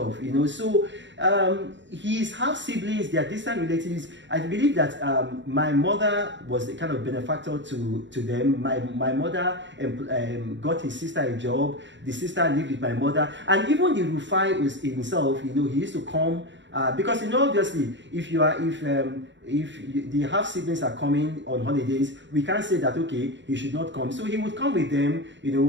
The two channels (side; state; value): left; late; 0.53 ms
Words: So his half siblings, they are distant relatives. I believe that my mother was the kind of benefactor to them. My mother got his sister a job. The sister lived with my mother, and even the Rufai was himself. He used to come. Because obviously, if the half siblings are coming on holidays, we can't say that okay, he should not come. So he would come with them. He